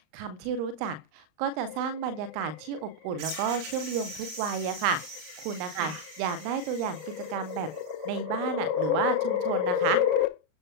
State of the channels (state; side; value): late; left; 39 ms